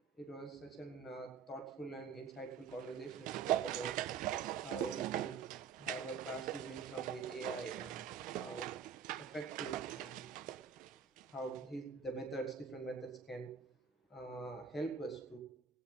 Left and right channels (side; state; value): left; quieter; 6.8 dB